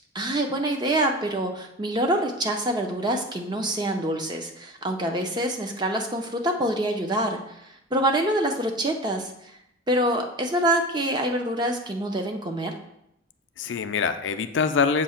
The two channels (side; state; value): both; normal; correlation 0.29